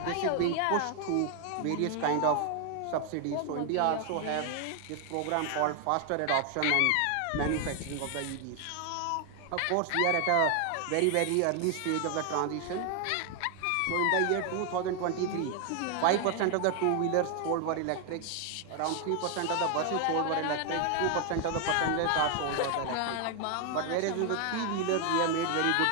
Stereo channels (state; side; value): different; both; correlation 0.00